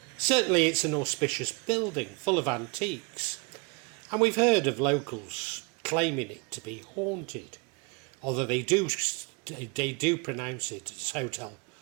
Certainly it's an auspicious building full of antiques, and we've heard of locals claiming it to be haunted, although they do pronounce it as Hotel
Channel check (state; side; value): quieter; left; 30.3 dB